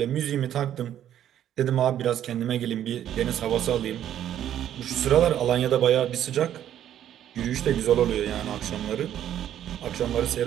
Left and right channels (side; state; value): left; quieter; 10.9 dB